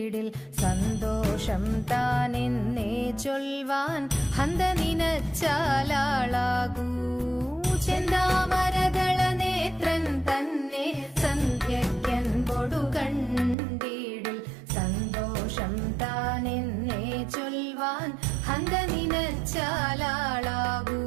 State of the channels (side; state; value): left; drops out; at 13.6 s